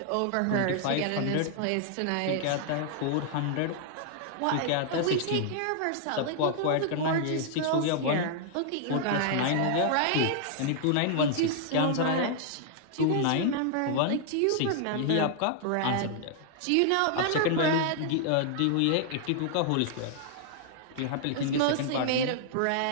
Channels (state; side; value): different; both; correlation -0.01